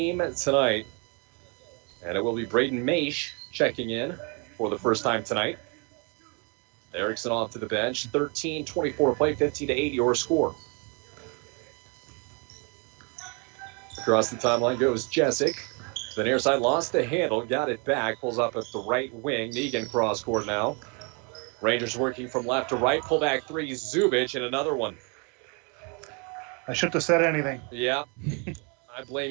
tonight. And it will be Braden Maish checking in for the first time tonight. Erickson off to the bench. 13:24 to play, 15-8 your score. Across the timeline goes Jessic. The near side lost the handle, got it back, pulls up at the right wing. Negan cross court now. Rangers working from left to right. Pull back 3, Zubich, and another one. I shouldn't have said anything. Yeah, I blame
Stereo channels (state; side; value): quieter; left; 34.1 dB